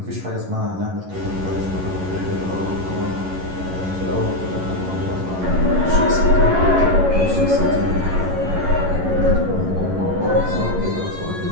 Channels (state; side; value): late; left; 11 ms